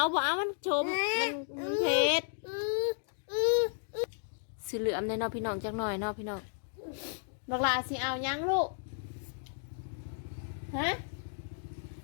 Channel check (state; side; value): silent; right; digital silence